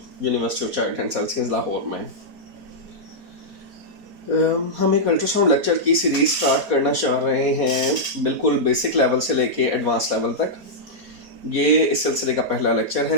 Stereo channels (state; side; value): late; left; 4.2 ms